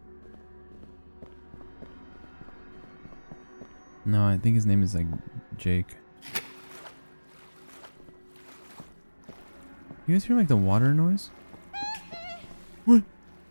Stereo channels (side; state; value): both; inverted; correlation -1.00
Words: No, I think his name is like Jake. You guys hear like the water noise? What? What